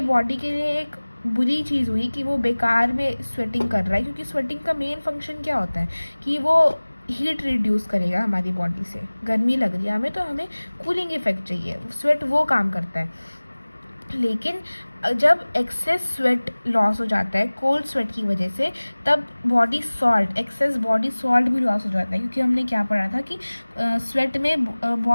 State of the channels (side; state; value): both; inverted; correlation -1.00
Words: बॉडी के लिए एक बुरी चीज़ हुई कि वो बेकार में स्वेटिंग कर रहा है, क्योंकि स्वेटिंग का मेन फंक्शन क्या होता है कि वो हीट रिड्यूस करेगा हमारी बॉडी से। गर्मी लग रही है हमें तो हमें कूलिंग इफेक्ट चाहिए, स्वेट वो काम करता है। लेकिन जब एक्सेस स्वेट लॉस हो जाता है कोल्ड स्वेट की वजह से, तब body salt, access body salt भी लॉस हो जाता है, क्योंकि हमने क्या पढ़ा था कि स्वेट में